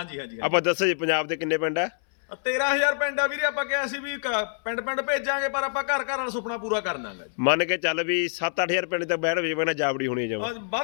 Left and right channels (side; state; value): right; silent; 61 dB below the other